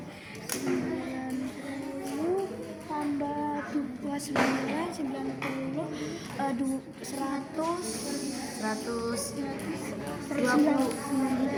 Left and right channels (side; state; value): both; identical; correlation 1.00